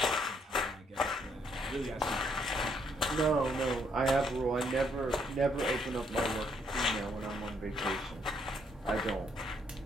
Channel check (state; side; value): normal; both; correlation 0.71